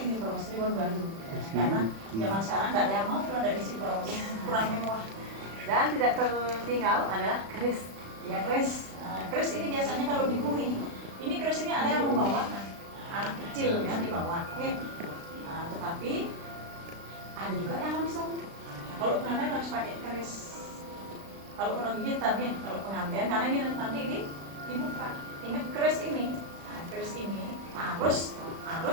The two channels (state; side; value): late; left; 36 ms